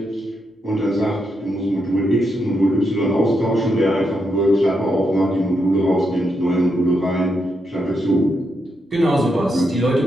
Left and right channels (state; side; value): normal; both; correlation 0.82